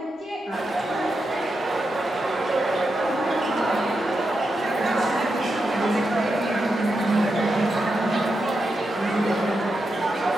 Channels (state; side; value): normal; both; correlation 0.86